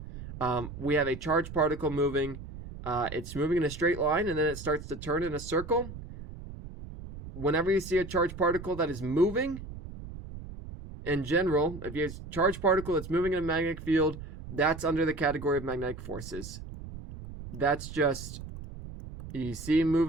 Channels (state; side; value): noise; right; rumble, 12 dB below the sound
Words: we have a charged particle moving. It's moving in a straight line, and then it starts to turn in a circle. Whenever you see a charged particle that is moving, in general, if you have a charged particle that's moving in a magnetic field, that's under the category of magnetic forces. That's just, you see